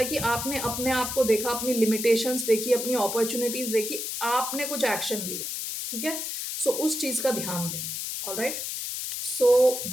कि आपने अपने आप को देखा, अपनी लिमिटेशंस देखी, अपनी अपॉर्चुनिटीज देखी, आपने कुछ एक्शन लिया, ठीक है। सो उस चीज का ध्यान दें। Alright, so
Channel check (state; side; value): noise; left; hiss, 4 dB below the sound